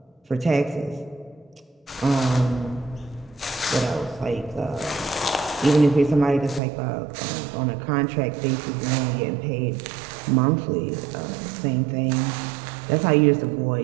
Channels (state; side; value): drops out; left; at 6.6 s